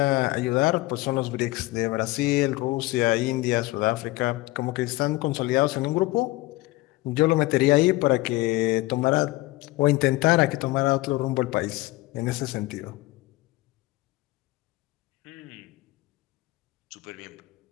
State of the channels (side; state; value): right; quieter; 19.9 dB